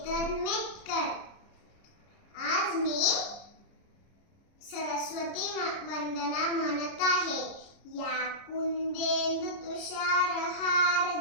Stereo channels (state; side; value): late; right; 30 ms